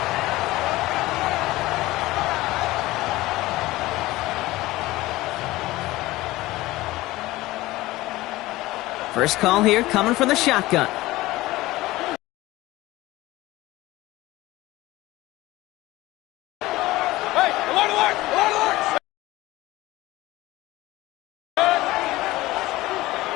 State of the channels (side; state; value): right; quieter; 18.4 dB